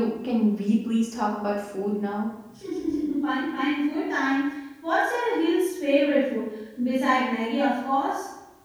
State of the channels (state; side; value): identical; both; correlation 1.00